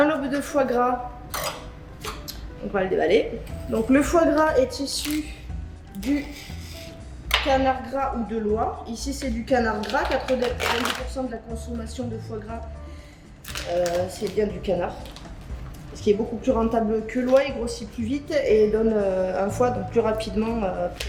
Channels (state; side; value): identical; both; correlation 1.00